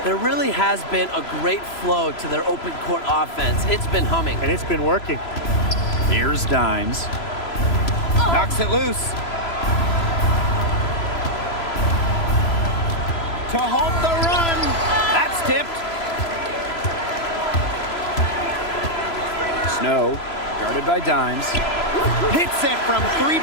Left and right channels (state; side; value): late; right; 3.0 ms